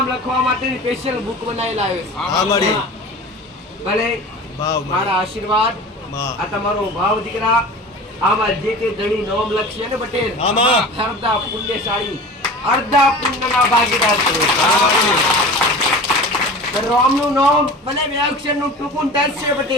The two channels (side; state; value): both; normal; correlation 0.36